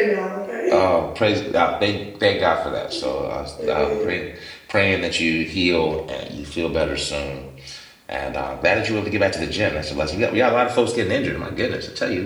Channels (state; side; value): identical; both; correlation 1.00